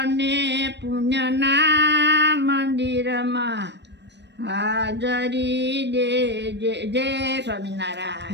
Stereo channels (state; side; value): late; left; 0.50 ms